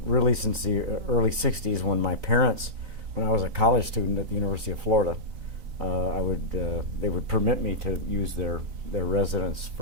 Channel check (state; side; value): late; left; 3.9 ms